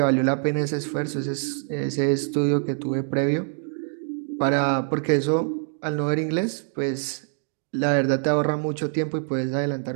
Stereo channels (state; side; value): silent; left; 60 dB below the other